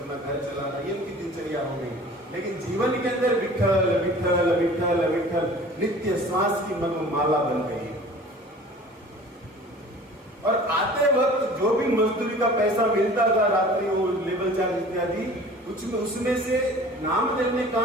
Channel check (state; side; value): normal; both; correlation 0.45